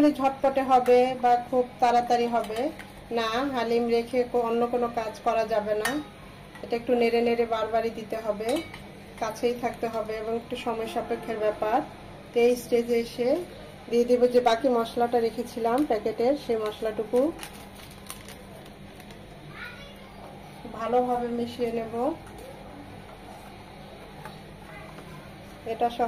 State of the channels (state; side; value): identical; both; correlation 1.00